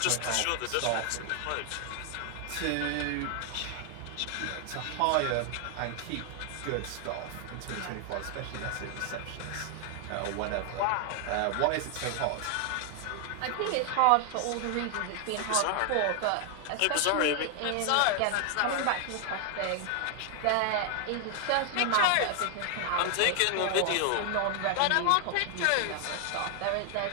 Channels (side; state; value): both; different; correlation 0.00